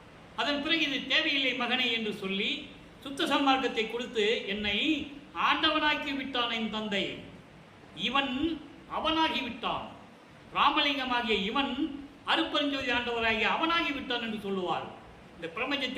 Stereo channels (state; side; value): identical; both; correlation 1.00